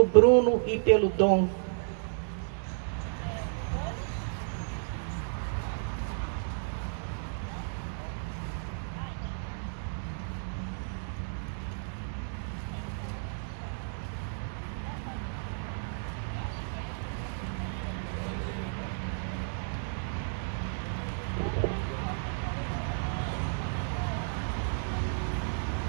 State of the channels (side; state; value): left; silent; 56 dB below the other